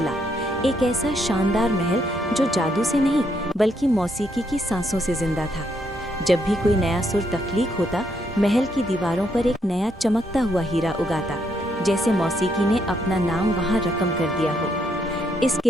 एक ऐसा शानदार महल जो जादू से नहीं बल्कि मौसीकी की सांसों से जिंदा था। जब भी कोई नया सुर तख्लीक होता, महल की दीवारों पर एक नया चमकता हुआ हीरा उगाता, जैसे मौसीकी ने अपना नाम वहाँ रकम कर दिया हो। इस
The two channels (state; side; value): normal; both; correlation 0.75